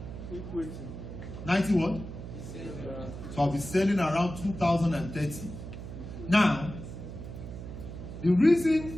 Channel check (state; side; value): noise; right; hum, 10 dB below the sound